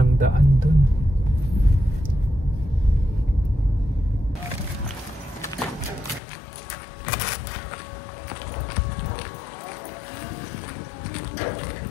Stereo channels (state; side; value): drops out; right; at 6.2 s